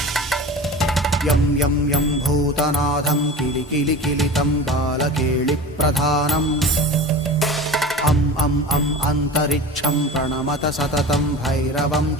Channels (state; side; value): normal; both; correlation 0.35